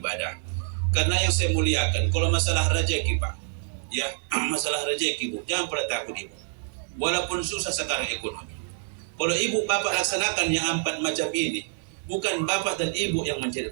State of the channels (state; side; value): silent; left; 60 dB below the other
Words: Karena yang saya muliakan, kalau masalah rezeki Pak, ya, masalah rezeki Bu, jangan pernah takut Ibu. Walaupun susah sekarang ekonomi. Kalau ibu bapak laksanakan yang 4 macam ini, bukan bapak dan ibu yang mencari